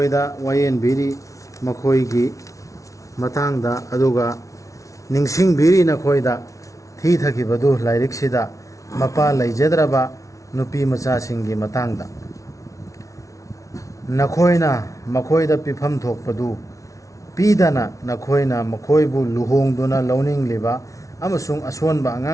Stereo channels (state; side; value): late; right; 0.16 ms